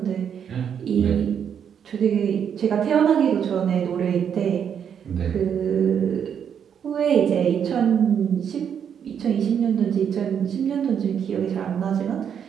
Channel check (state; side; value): quieter; left; 8.1 dB